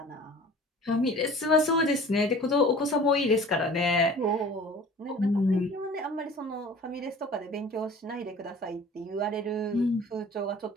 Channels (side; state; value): both; normal; correlation 0.45